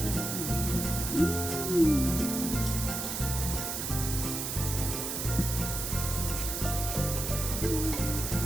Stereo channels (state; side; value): noise; right; hiss, 3 dB below the sound